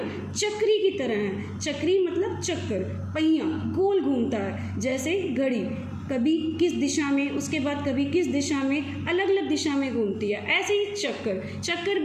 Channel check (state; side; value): identical; both; correlation 1.00